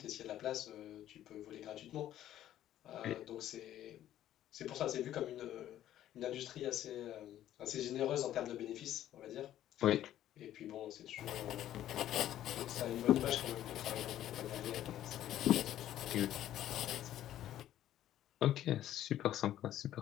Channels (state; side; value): quieter; right; 12.3 dB